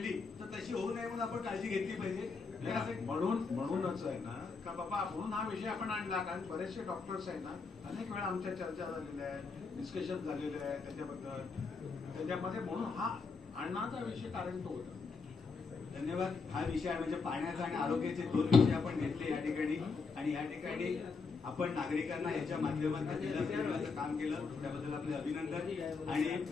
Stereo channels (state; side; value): quieter; right; 4.7 dB